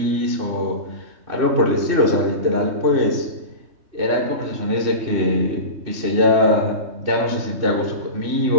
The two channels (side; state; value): left; late; 3.2 ms